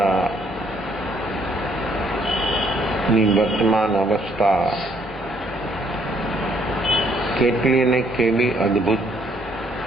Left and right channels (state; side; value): normal; both; correlation 0.67